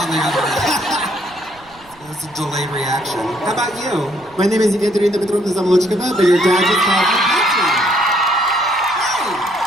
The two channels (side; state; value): right; noise; rumble, 27 dB below the sound